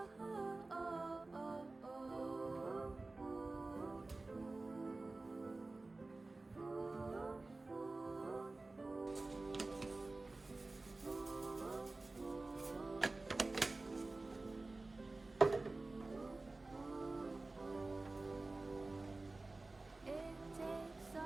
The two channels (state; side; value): quieter; left; 3.2 dB